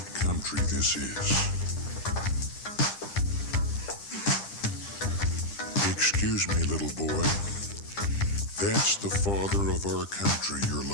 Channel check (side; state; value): right; late; 9.9 ms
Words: country this is. Excuse me, little boy. That's the father of our country you're